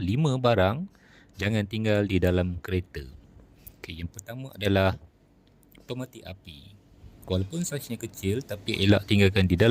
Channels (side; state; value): both; identical; correlation 1.00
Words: barang jangan tinggal di dalam kereta. Okey, yang pertama adalah pemetik api. Walaupun saiznya kecil tapi elak tinggalkan di